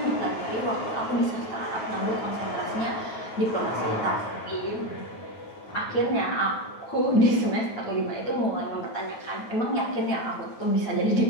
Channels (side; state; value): right; late; 9.2 ms